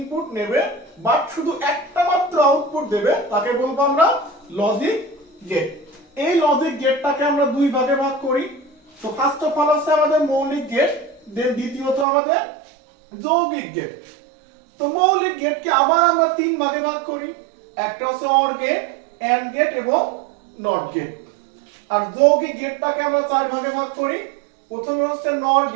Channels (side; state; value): left; drops out; at 12.1 s